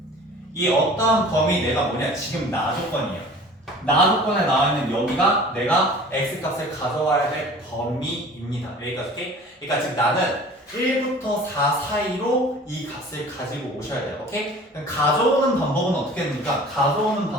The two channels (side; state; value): both; normal; correlation 0.45